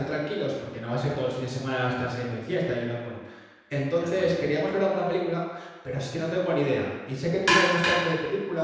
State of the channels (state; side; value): identical; both; correlation 1.00